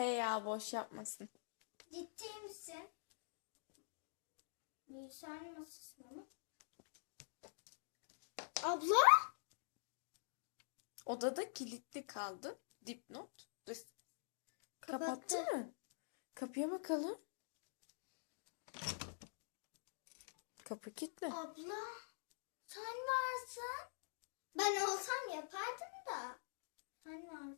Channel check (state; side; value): silent; right; digital silence